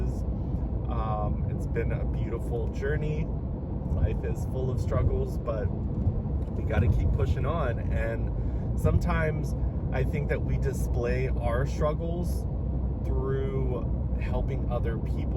It's been a beautiful journey. Life is full of struggles, but we got to keep pushing on. And sometimes I think that we display our struggles through helping other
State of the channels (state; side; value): identical; both; correlation 1.00